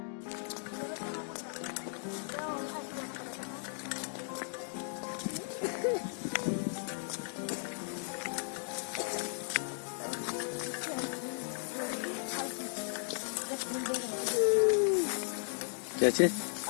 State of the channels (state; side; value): silent; right; 54 dB below the other